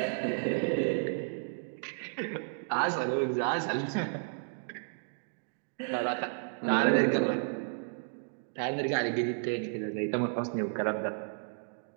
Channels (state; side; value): silent; left; digital silence